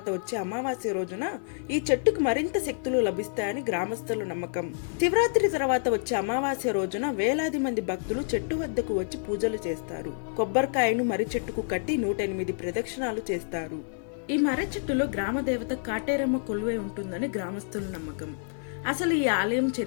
వచ్చే అమావాస్య రోజున ఈ చెట్టుకు మరింత శక్తులు లభిస్తాయని గ్రామస్తుల నమ్మకం. శివరాత్రి తర్వాత వచ్చే అమావాస్య రోజున వేలాది మంది భక్తులు చెట్టు వద్దకు వచ్చి పూజలు చేస్తారు. కొబ్బరికాయను మర్రి చెట్టుకు కట్టి 108 ప్రదక్షిణాలు చేస్తారు. ఈ మర్రి చెట్టులో గ్రామ దేవత కాటేరమ్మ కొలువై ఉంటుందని గ్రామస్తుల నమ్మకం. అసలు ఈ ఆలయం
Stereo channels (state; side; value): silent; right; 59 dB below the other